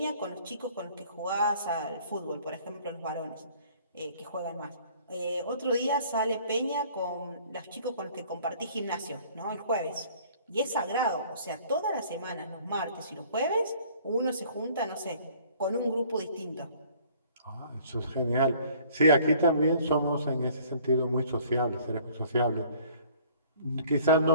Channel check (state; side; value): inverted; both; correlation -0.55